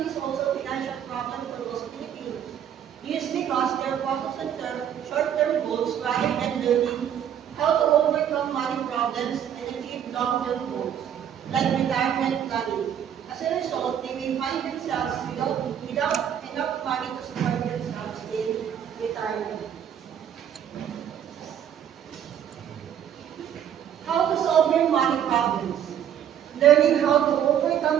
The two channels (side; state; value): left; quieter; 9.5 dB